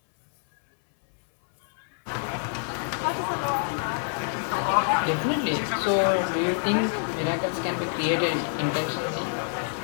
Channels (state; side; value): silent; right; 61 dB below the other